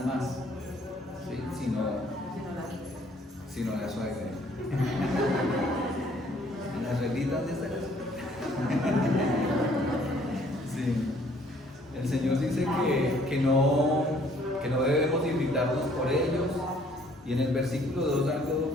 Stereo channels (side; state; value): both; normal; correlation 0.61